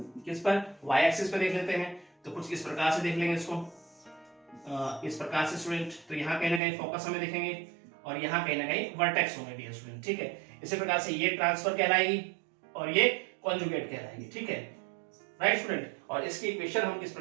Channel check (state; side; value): drops out; left; at 6.6 s